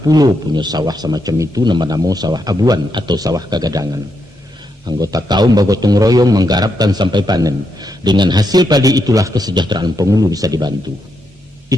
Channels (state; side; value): normal; both; correlation 0.81